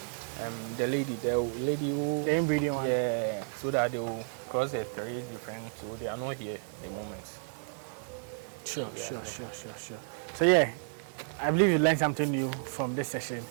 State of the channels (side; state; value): left; silent; digital silence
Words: the lady who the inbreeding one. Yeah, so that they will cross the 3 different, so they are not here at the moment. Sure. So yeah, I believe you learned something new from this session.